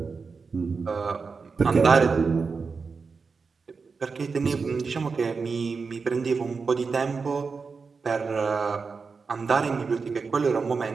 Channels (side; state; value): left; quieter; 4.9 dB